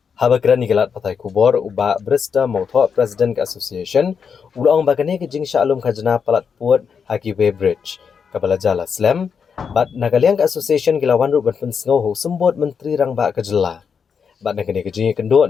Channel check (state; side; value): quieter; right; 6.4 dB